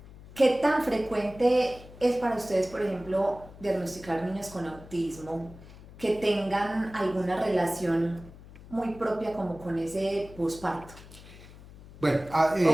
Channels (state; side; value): noise; left; hum, 19 dB below the sound